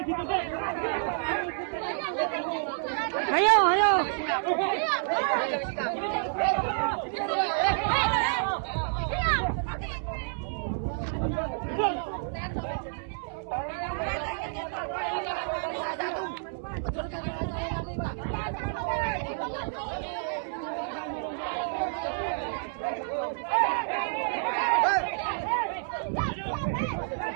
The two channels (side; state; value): left; silent; 58 dB below the other